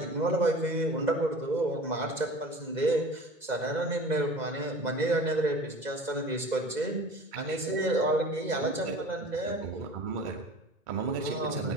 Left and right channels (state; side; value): late; left; 2.1 ms